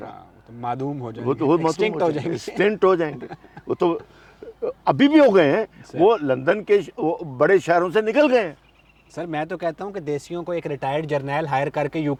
رہا. ہاں، تو معدوم ہو جائیں وہ گے، تو ایکسٹنکٹ ہو جائیں گے. ایکسٹنٹ ہو جائیں گے. وہ تو ابھی بھی ہو گئے ہیں، وہ لندن کے بڑے شہروں سے نکل گئے ہیں. سر میں تو کہتا ہوں کہ دیسیوں کو ایک ریٹائرڈ جرنیل ہائر کر کے یو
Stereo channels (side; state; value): both; identical; correlation 1.00